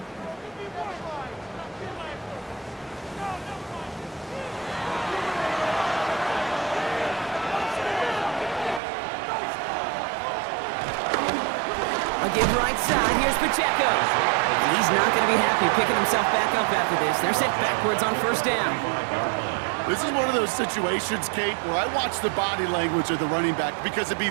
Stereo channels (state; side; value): drops out; left; at 8.8 s